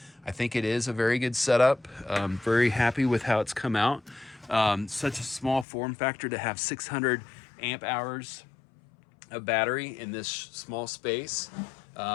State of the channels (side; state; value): right; drops out; at 5.7 s